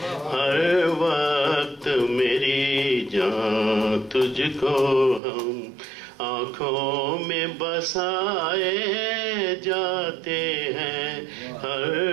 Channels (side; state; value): left; drops out; at 5.2 s